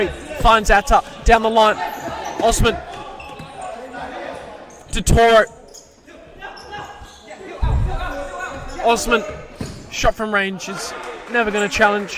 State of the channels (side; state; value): both; identical; correlation 1.00